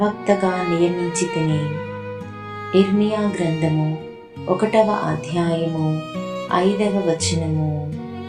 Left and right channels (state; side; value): identical; both; correlation 1.00